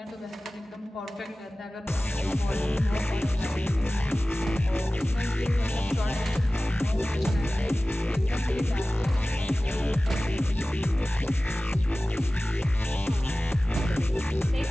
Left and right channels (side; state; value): both; normal; correlation 0.97